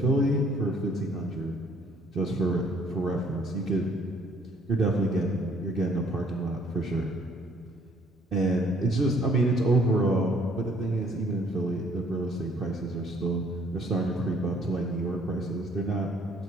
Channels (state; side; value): normal; both; correlation 0.61